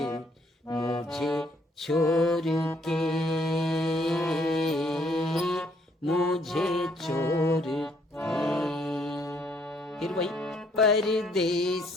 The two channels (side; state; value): both; normal; correlation 0.67